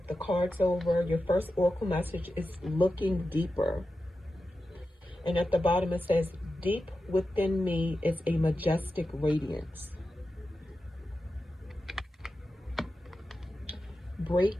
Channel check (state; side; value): normal; both; correlation 0.91